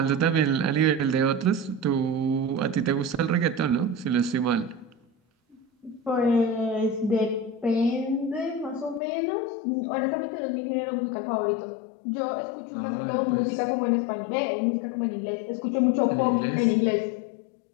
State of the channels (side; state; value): right; drops out; at 9.0 s